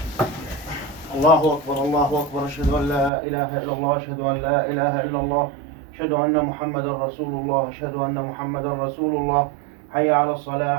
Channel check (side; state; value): left; drops out; at 3.1 s